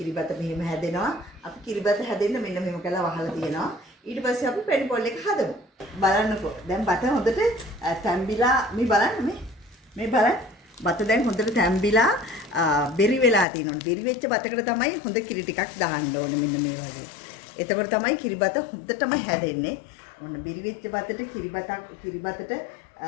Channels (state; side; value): drops out; right; at 13.5 s